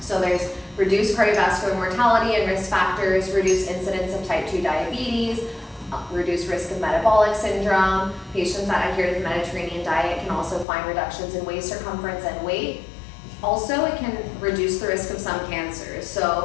So there's reduced cardiovascular mortality and risk factors, reduced incidence of type 2 diabetes, reduced risk of metabolic syndrome. Patients that adhere to the Mediterranean diet can also find reductions in waist circumference and weight. Also, it can reduce the risk of some cancers.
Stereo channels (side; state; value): right; drops out; at 10.7 s